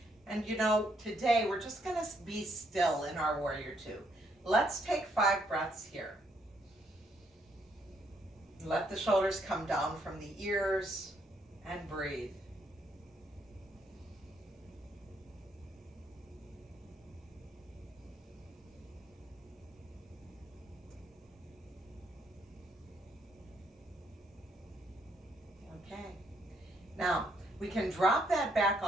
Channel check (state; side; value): normal; both; correlation 0.72